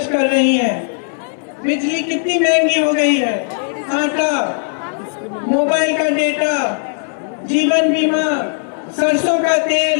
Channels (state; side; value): silent; right; 65 dB below the other